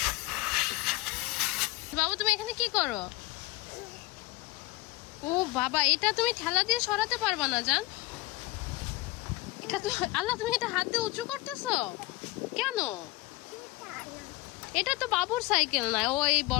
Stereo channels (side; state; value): right; quieter; 20.9 dB